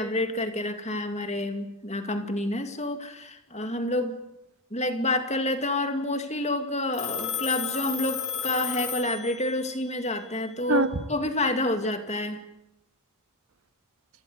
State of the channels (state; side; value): normal; both; correlation 0.13